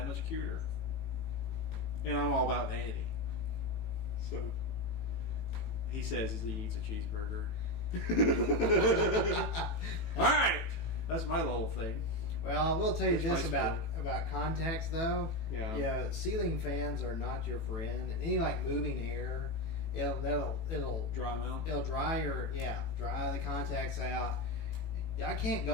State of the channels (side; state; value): right; late; 18 ms